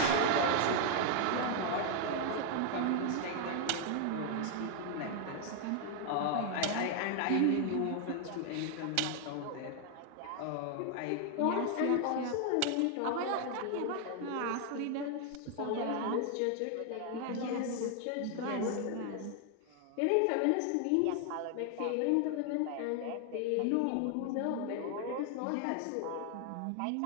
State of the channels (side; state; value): both; different; correlation 0.00